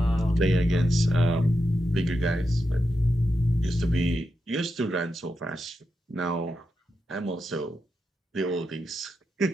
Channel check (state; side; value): normal; both; correlation 0.87